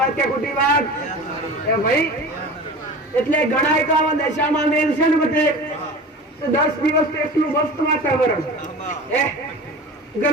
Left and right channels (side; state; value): both; normal; correlation 0.35